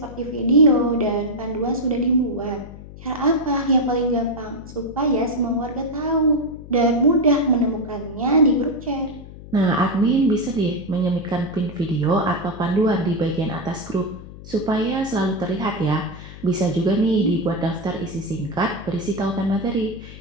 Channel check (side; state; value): left; noise; hum, 15 dB below the sound